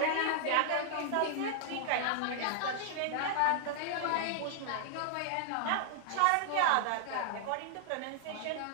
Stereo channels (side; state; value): both; different; correlation -0.01